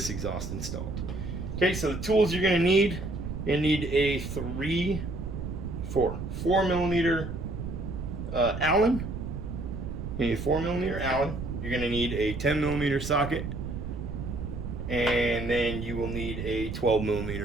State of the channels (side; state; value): right; noise; rumble, 6 dB below the sound